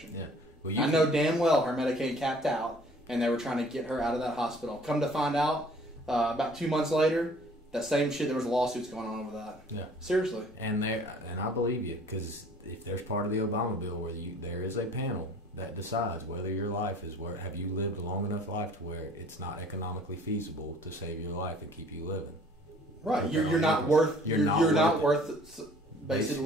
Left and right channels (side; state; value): both; normal; correlation 0.53